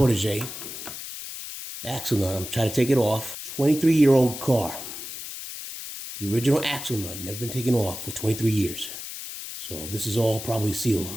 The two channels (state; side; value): noise; left; hiss, 9 dB below the sound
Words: Axle nut, I'm trying to take it off. 23-year-old car. The original axle nut, never been taken off for 23 years. So this is all probably sealed.